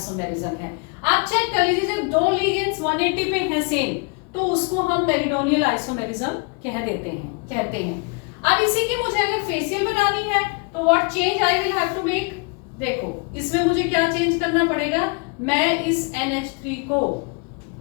है। आप चेक कर लीजिए जब 2 लिगेंड्स 180 पे है सेम, तो उसको हम मेरिडोनियल आइसोमेरिज्म कहते हैं। अब इसी की मुझे अगर फेशियल बनानी है तो what change I will have to make, देखो इसमें मुझे क्या चेंज करना पड़ेगा, मैं इस NH3 को,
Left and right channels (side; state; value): right; quieter; 32.7 dB